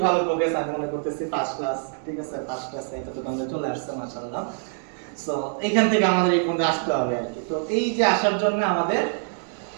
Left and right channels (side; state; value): left; silent; 62 dB below the other